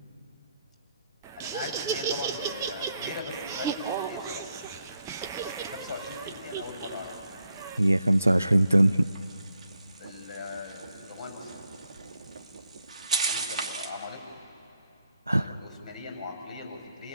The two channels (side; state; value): both; inverted; correlation -0.79